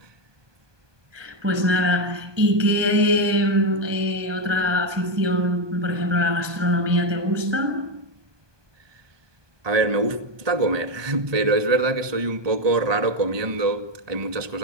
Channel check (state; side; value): late; left; 1.2 ms